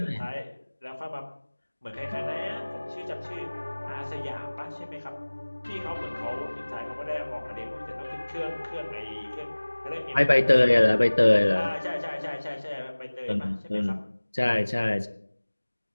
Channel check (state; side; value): inverted; both; correlation -1.00